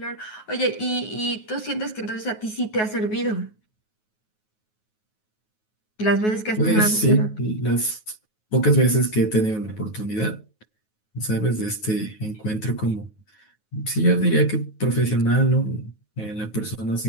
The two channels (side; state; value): right; late; 9.4 ms